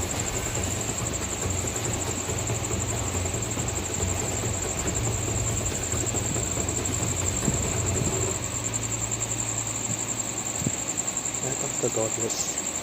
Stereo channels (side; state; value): both; identical; correlation 1.00